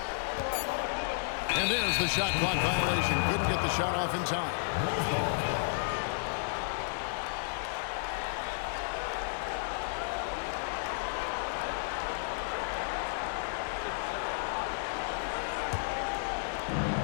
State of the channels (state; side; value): silent; right; digital silence